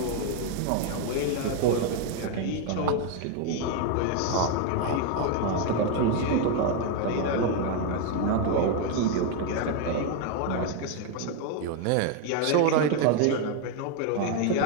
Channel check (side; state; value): both; different; correlation 0.01